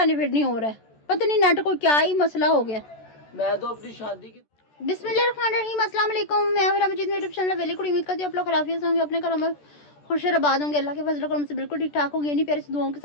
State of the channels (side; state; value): right; late; 14 ms